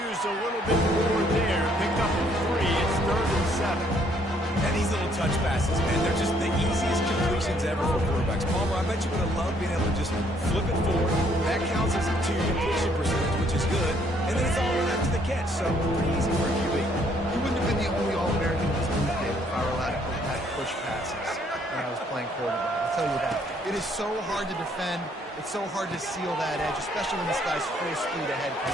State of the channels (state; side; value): normal; both; correlation 0.66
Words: a little bit more there. Picked up a 3. It's 3rd and 7. And these little touch passes, man, they're just the easiest completion options ever for quarterbacks. Palmer, I bet you would have loved being able to just flip it forward. That counts as to your completion percentage, which is good. And then it's all run after the catch, so pretty easy for a QB. He wouldn't have been the only All-American in this league, Dave, if I were allowed to go back push passes when I was playing quarterback. I'll tell you that. It is so hard to defend. It's so hard to seal that edge, especially when this guy's full speed ahead